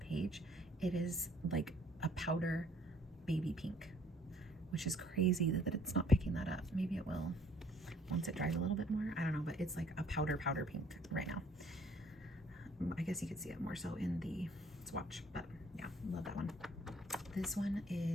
it is like a powder baby pink, which is crazy that it's not picking that up. Maybe it will once it dries a little bit more. I don't know, but it's like a powder pink right now. I guess you could see it more so in the swatch, but yeah, love that one. This one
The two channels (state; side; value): normal; both; correlation 0.60